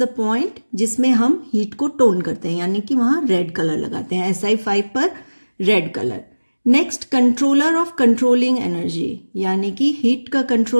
point जिसमें हम हीट को टोन करते हैं, यानी कि वहां रेड कलर लगाते हैं, Si5 पर red colour. Next controller of controlling energy, यानी कि हीट का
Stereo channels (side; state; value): both; inverted; correlation -1.00